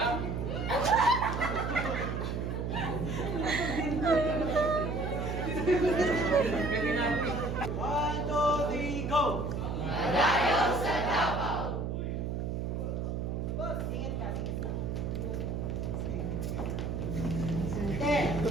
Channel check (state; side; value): noise; right; hum, 2 dB below the sound